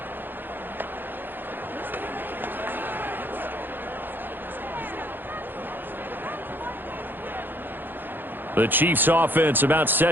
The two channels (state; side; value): late; left; 0.094 ms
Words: The Chiefs offense about